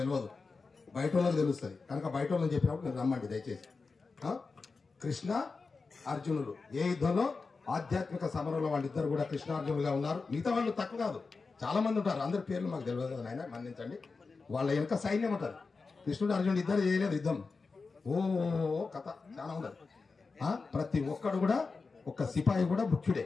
తెలియదు, బయట వాళ్ళకి తెలుస్తుంది కనుక బయట వాళ్ళని చెప్పినప్పుడు నేను రమ్మండి దయచేసి. కృష్ణ అర్జునులు ఏ యుద్ధంలో ఆధ్యాత్మిక సమరంలో వాళ్ళిద్దరు కూడా కృష్ణార్జునులుగా ఉన్నారు. మిగతా వాళ్ళు తక్కువ కాదు, చాలా మంది ఉంటారు. అందరి పేర్లు మాకు తెలియదు కదా నాయన, మన్నించండి. వాళ్ళ వెనక సైన్యం ఉంటుంది. కృష్ణుడు అర్జునుడు ఇద్దరు చేయలేదు యుద్ధం, ఓ కథ చాలా ఉండదు. ప్రతి ఒక్కడు కూడా ఒక్క సిపాయి కూడా ముఖ్యుడే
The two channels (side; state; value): right; quieter; 4.3 dB